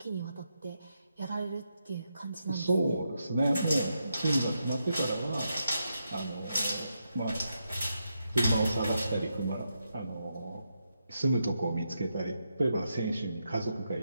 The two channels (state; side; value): inverted; both; correlation -0.84